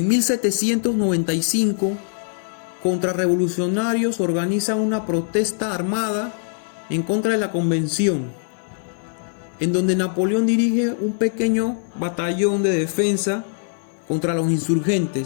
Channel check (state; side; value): silent; right; 56 dB below the other